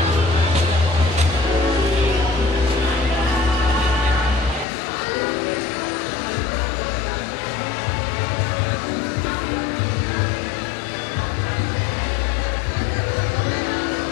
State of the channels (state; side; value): drops out; right; at 4.7 s